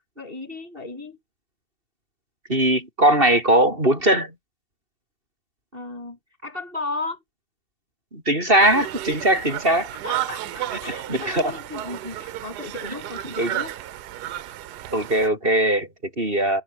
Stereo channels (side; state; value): left; late; 2.7 ms